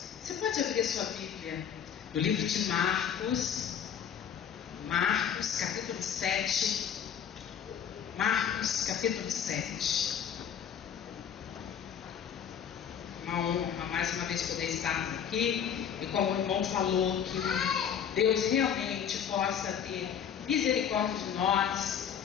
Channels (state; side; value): quieter; right; 8.3 dB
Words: Você pode abrir a sua Bíblia no livro de Marcos, capítulo 7. Marcos, capítulo 7. Uma honra, mais uma vez, poder estarmos aqui. E como o irmão falou, que Deus realmente possa ter misericórdia de nós,